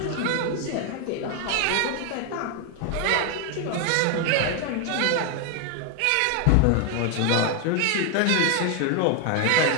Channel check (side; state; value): both; different; correlation 0.01